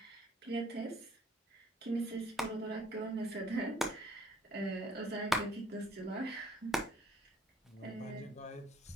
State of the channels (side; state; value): both; normal; correlation 0.61